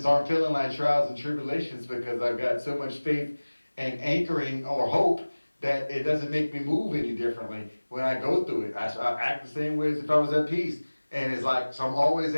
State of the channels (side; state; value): both; inverted; correlation -1.00